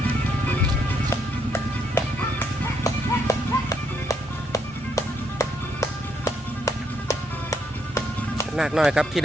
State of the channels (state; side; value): normal; both; correlation 0.75